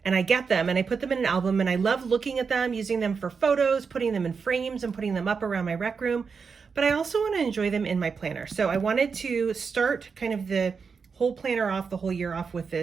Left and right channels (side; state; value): left; quieter; 5.5 dB